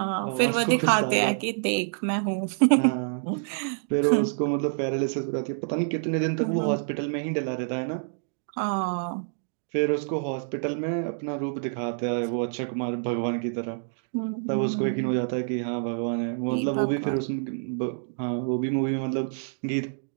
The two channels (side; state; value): left; silent; digital silence